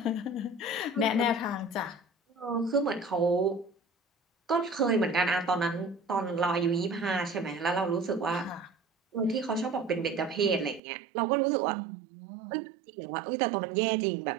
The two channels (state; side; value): drops out; left; at 10.8 s